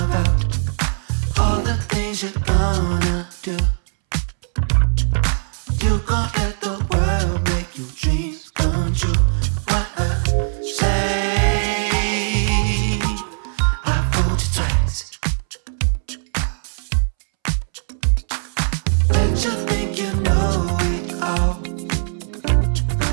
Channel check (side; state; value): left; silent; 66 dB below the other